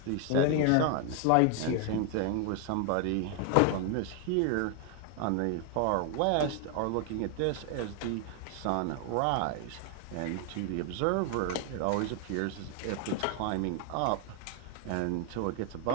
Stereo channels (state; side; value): different; both; correlation 0.00